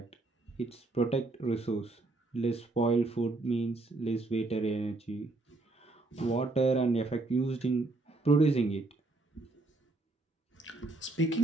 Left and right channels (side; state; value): left; quieter; 3.1 dB